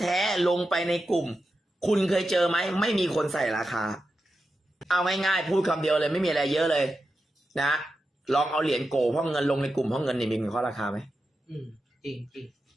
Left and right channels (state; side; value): normal; both; correlation 0.90